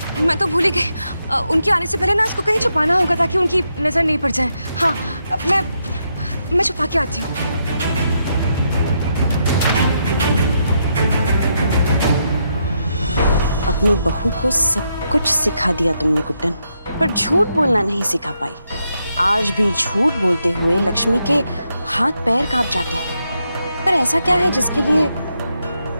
मैं तो भूल ही गई। उनके आने से पहले ना इसको कहीं छुपाना होगा ताकि उनकी नजर नहीं पड़ जाए। हाँ, मैं छुपा के आती हूँ। अपनी बहू को सब कुछ सिखा दिया तुमने गुड्डन, पर झूठ बोलना नहीं सिखा पाई। आज भी झूठ बोलते हुए लक्ष्मी के हाथ पैर कांप जाते हैं। पर ऐसा क्या है जिसके लिए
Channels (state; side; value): inverted; both; correlation -0.81